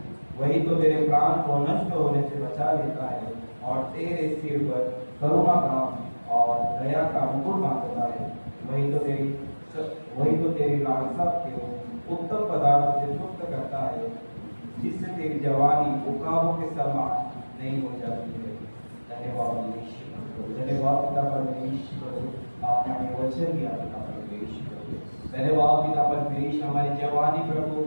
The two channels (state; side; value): inverted; both; correlation -1.00